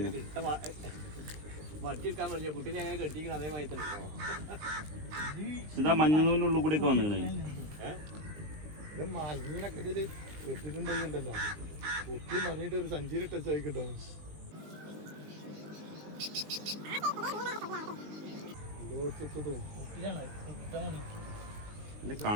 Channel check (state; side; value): late; left; 19 ms